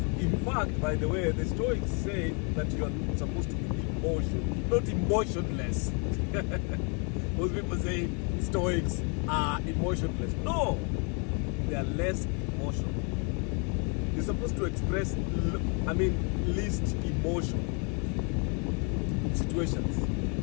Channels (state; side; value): quieter; right; 36.6 dB